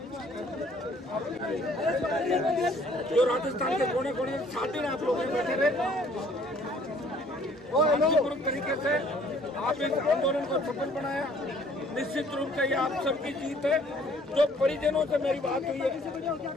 जो राजस्थान के कोने कोने 7 दिन आप लोग बैठे रहे, शांतिपूर्वक तरीके से आप इस आंदोलन को सफल बनाया। निश्चित रूप से ये आप सबकी जीत है। जो परिजनों से मेरी बात हुई है,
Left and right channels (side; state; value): both; normal; correlation 0.59